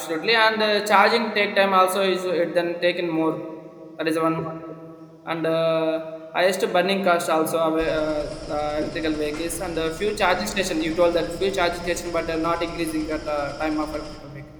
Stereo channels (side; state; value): both; identical; correlation 1.00